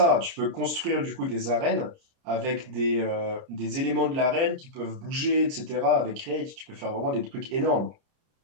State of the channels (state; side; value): late; left; 30 ms